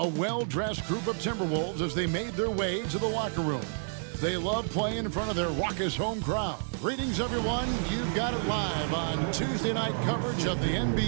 A well-dressed group of Timberwolves as they made their way to the locker room. They love playing in front of their raucous home crowd. Greetings, everyone. You've got it live on Tuesday night coverage of the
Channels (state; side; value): silent; left; 58 dB below the other